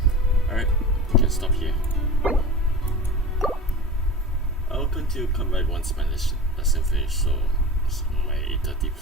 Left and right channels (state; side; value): normal; both; correlation 0.34